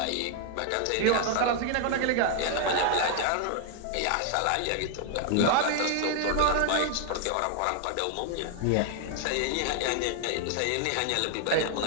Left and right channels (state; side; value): different; both; correlation 0.00